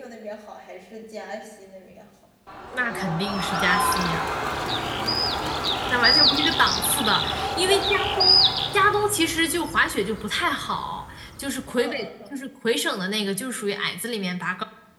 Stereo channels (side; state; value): both; identical; correlation 1.00